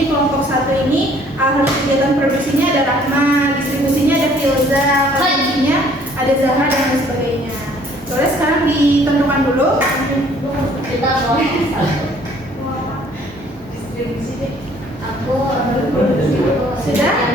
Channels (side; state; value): both; normal; correlation 0.58